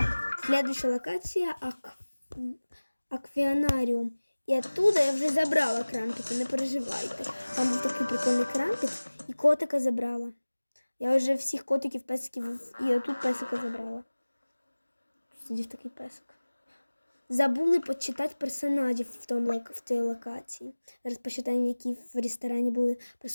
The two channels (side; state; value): both; inverted; correlation -1.00